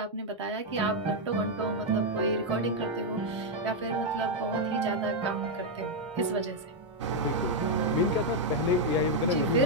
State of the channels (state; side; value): normal; both; correlation 0.00